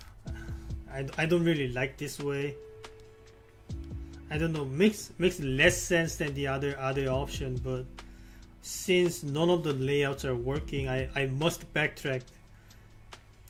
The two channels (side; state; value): both; identical; correlation 1.00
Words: I don't really like this way. I don't know, makes less sense than the other option, but since none of the layouts are working, I must backtrack